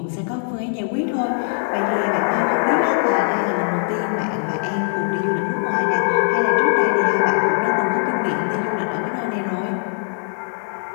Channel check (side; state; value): right; silent; digital silence